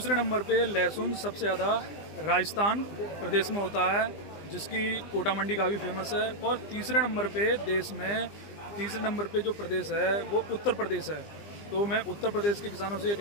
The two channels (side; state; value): right; late; 20 ms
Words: नंबर पे लहसुन सबसे ज़्यादा राजस्थान प्रदेश में होता है, जिसकी कोटा मंडी काफ़ी फेमस है। और तीसरे नंबर पे देश में तीसरे नंबर पे जो प्रदेश है वो उत्तर प्रदेश है। तो मैं उत्तर प्रदेश के किसानों से ये